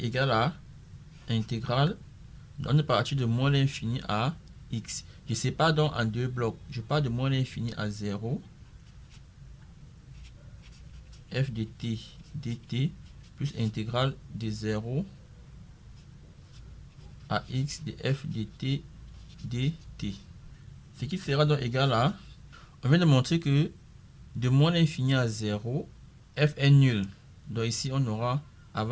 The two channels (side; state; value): both; identical; correlation 1.00